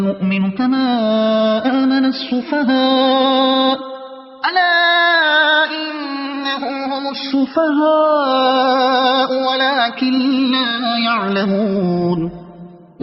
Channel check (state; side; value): identical; both; correlation 1.00